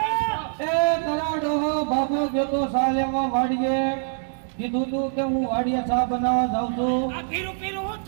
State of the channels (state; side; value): silent; left; digital silence